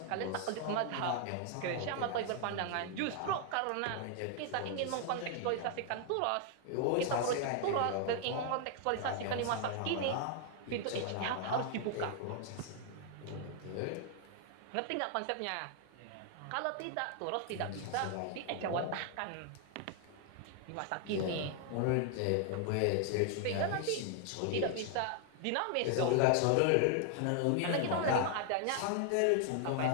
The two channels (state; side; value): different; both; correlation 0.00